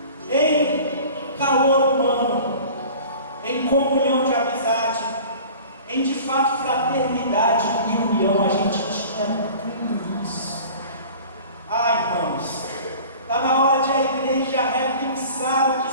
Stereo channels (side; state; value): both; inverted; correlation -0.43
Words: em calor humano, em comunhão de amizade, em de fato fraternidade e união. A gente tinha tudo isso. Irmãos, está na hora de a igreja repensar o